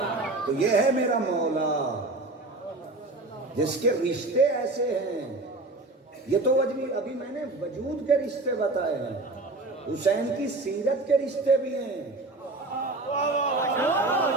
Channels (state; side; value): quieter; left; 3.0 dB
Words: تو یہ ہے میرا مولا جس کے رشتے ایسے ہیں. یہ تو ابھی میں نے وجود کے رشتے بتائے ہیں, حسین کی سیرت کے رشتے بھی ہیں.